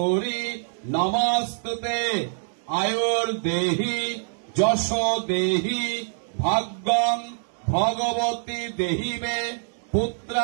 নমস্তুতে আয়ুর্দেহি যশ দেহি ভাগ্যং ভগবতী দেহি মে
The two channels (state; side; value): silent; left; digital silence